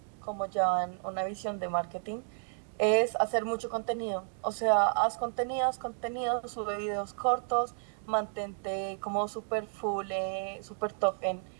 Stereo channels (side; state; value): left; silent; 56 dB below the other